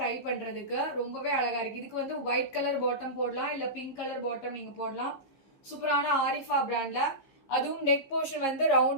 டை பண்றதுக்கு. ரொம்பவே அழகா இருக்கு. இதுக்கு வந்து ஒயிட் கலர் பாட்டம் போடலாம், இல்ல பிங்க் கலர் பாட்டம் நீங்க போடலாம். சூப்பரான ஆரிஃபா பிராண்ட்ல, அதுவும் நெக் போர்ஷன் வந்து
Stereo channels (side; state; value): right; late; 15 ms